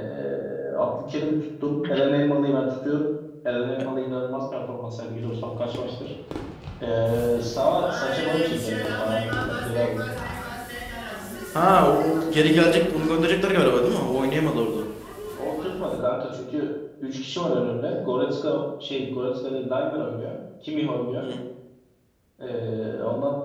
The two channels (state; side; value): identical; both; correlation 1.00